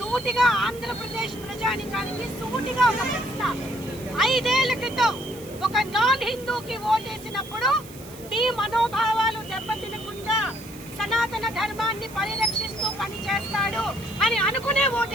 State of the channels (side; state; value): right; noise; hiss, 19 dB below the sound